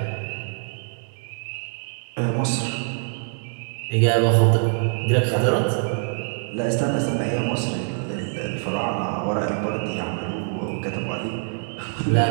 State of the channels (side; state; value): left; silent; 62 dB below the other